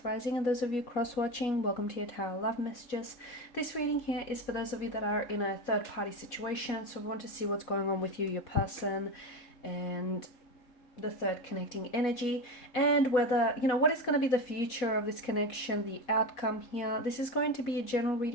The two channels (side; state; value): right; late; 4.1 ms